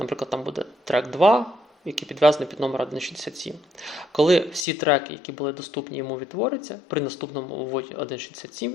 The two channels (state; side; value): drops out; right; at 4.7 s